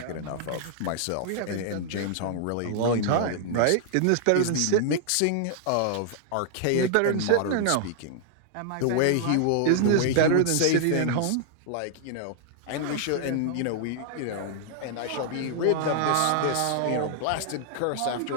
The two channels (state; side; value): different; both; correlation 0.00